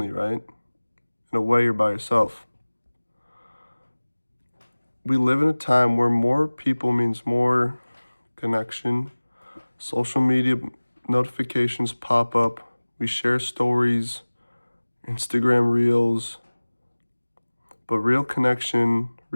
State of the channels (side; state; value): both; inverted; correlation -1.00